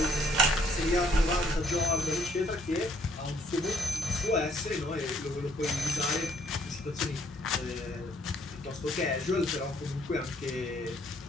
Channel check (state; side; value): normal; both; correlation 0.65